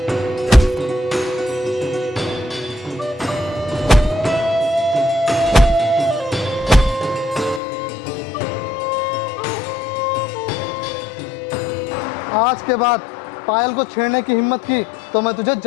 आज के बाद पायल को छेड़ने की हिम्मत की तो मैं तुझे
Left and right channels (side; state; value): right; drops out; at 7.6 s